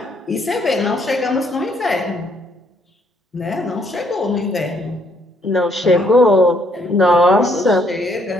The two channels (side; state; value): both; normal; correlation 0.68